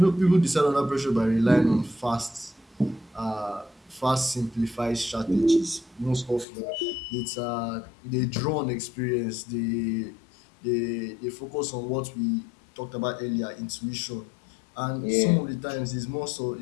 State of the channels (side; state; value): right; drops out; at 6.5 s